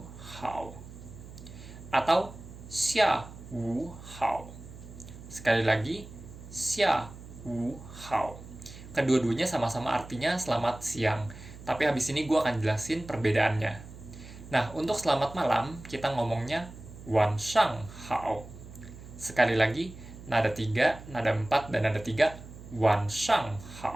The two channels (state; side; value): noise; right; hum, 15 dB below the sound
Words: hao. Atau xia wu hao. Sekali lagi, xia wu hao. Kedua-duanya sama-sama artinya selamat siang, tapi habis ini gue akan jelasin perbedaannya. Nah, untuk selamat malam, kita ngomongnya wan shang hao. Sekali lagi, nada 3, nada 4, dan nada 3, wan shang